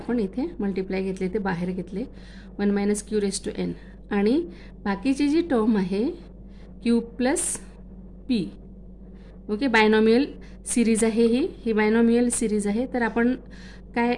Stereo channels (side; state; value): both; identical; correlation 1.00